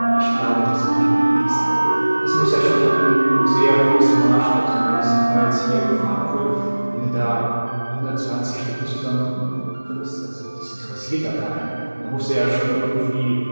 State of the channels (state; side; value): inverted; both; correlation -1.00